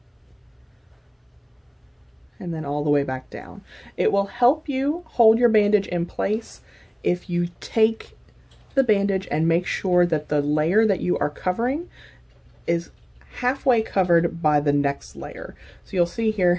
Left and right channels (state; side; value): identical; both; correlation 1.00